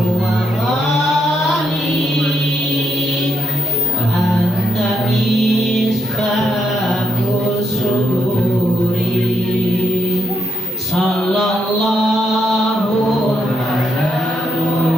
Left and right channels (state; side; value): normal; both; correlation 0.80